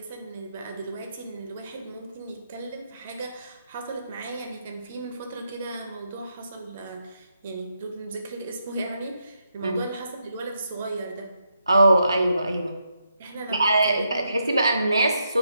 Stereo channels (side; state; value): both; inverted; correlation -0.81